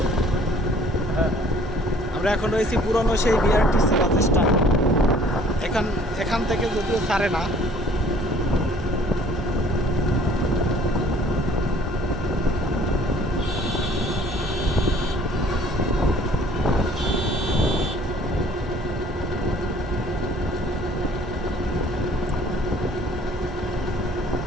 আমরা এখন রয়েছি পুরনো সেই বিআরটিসি বাস স্ট্যান্ড। এখান থেকে যদিও ছাড়ে না।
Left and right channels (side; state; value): both; normal; correlation 0.56